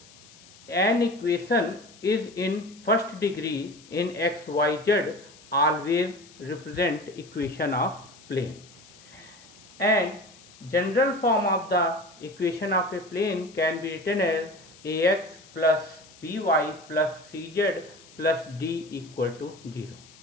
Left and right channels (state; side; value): noise; left; hiss, 23 dB below the sound